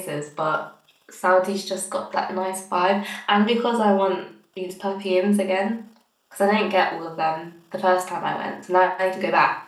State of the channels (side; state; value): both; identical; correlation 1.00